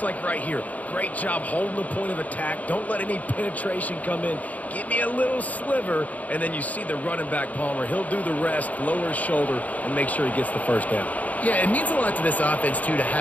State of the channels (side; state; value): right; late; 0.073 ms